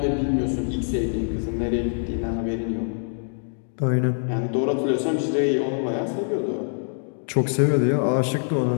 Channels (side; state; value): right; silent; digital silence